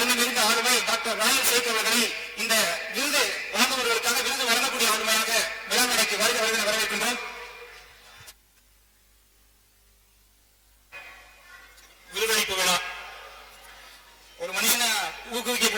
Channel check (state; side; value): identical; both; correlation 1.00